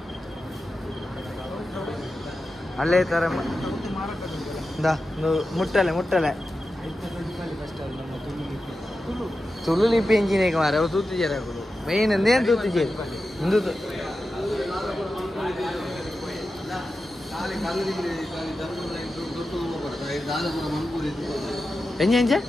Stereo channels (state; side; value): normal; both; correlation 0.92